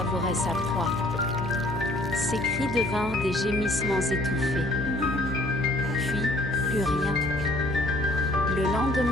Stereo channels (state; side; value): noise; left; hum, 9 dB below the sound